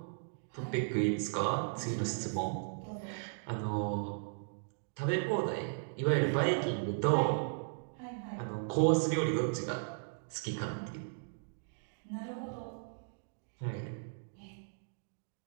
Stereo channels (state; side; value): silent; left; digital silence